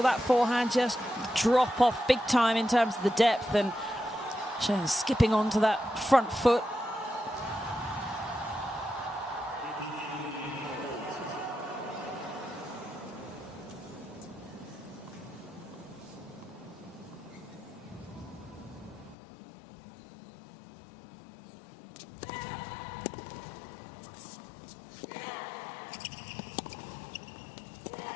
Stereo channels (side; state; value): right; drops out; at 19.2 s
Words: that forehand just drop off big time in terms of the depth, and Zheng skipping onto that front foot.